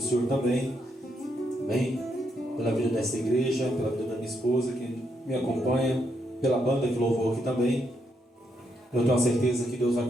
Senhor também. Amém? Pela vida desta igreja, pela vida da minha esposa que me acompanha, pela banda que louvou aqui também. Eu tenho a certeza que Deus vai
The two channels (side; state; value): both; normal; correlation 0.78